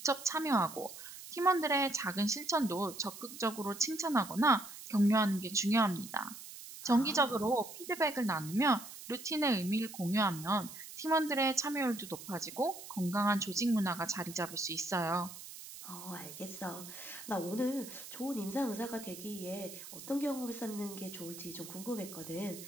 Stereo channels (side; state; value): right; noise; hiss, 13 dB below the sound